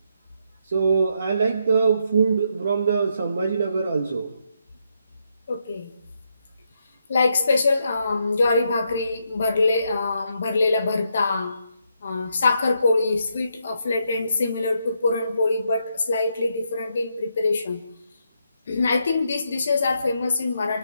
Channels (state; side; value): inverted; both; correlation -0.79